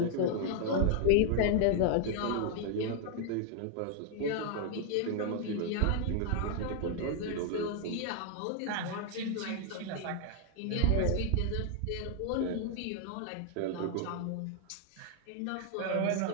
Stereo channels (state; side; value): different; both; correlation 0.00